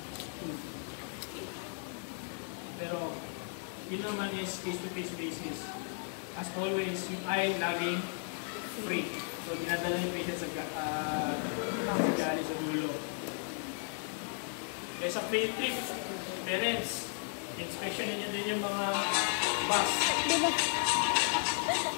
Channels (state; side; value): silent; right; 55 dB below the other